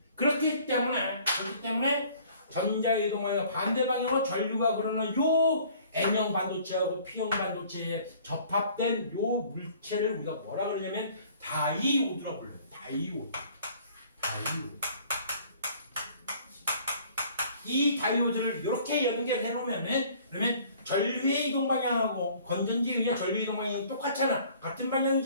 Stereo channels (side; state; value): both; inverted; correlation -0.54